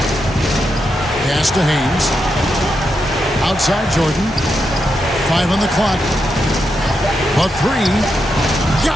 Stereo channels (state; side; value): normal; both; correlation 0.84